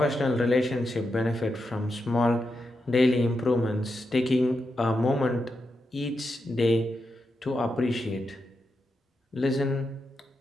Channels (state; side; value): normal; both; correlation 0.86